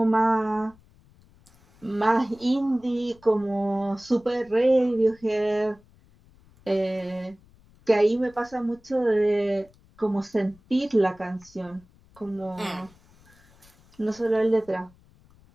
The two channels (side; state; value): left; noise; rumble, 28 dB below the sound